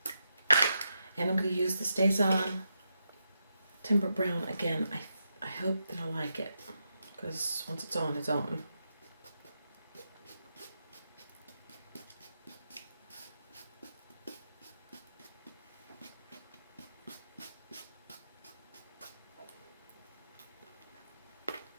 And I'm going to use the Stays On Timber Brown again. I hope that I like it, because once it's on, it's on.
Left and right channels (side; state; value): both; inverted; correlation -0.85